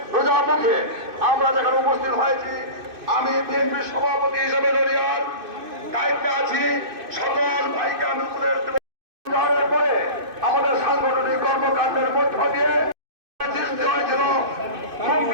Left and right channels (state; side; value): late; left; 2.5 ms